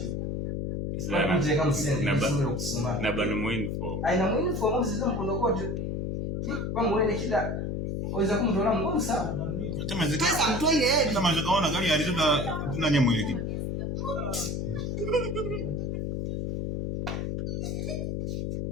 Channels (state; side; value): noise; left; hum, 2 dB below the sound